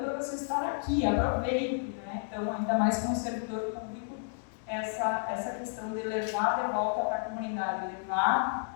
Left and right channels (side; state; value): right; silent; 57 dB below the other